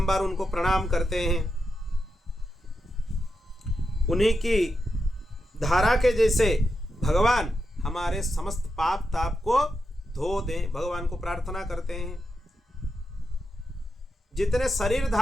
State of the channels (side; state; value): both; normal; correlation 0.87